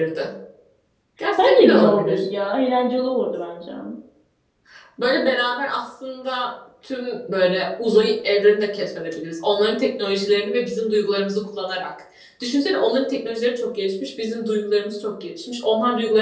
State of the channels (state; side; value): identical; both; correlation 1.00